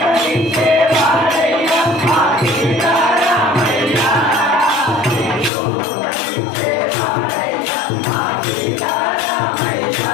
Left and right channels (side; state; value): right; drops out; at 5.5 s